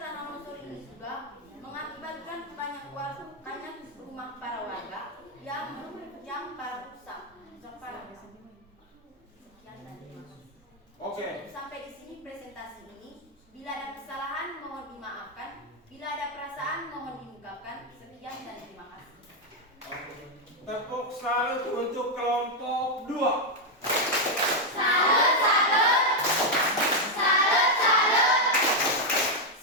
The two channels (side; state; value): both; normal; correlation 0.02